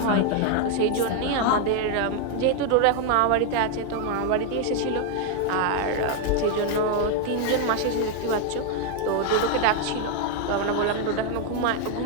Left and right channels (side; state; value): both; different; correlation 0.00